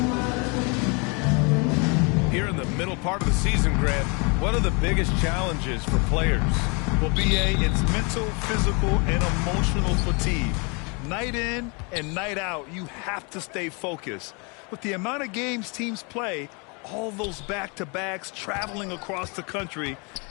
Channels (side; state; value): right; quieter; 32.2 dB